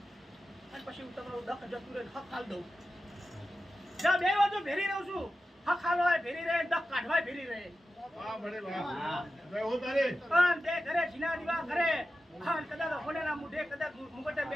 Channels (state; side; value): normal; both; correlation 0.93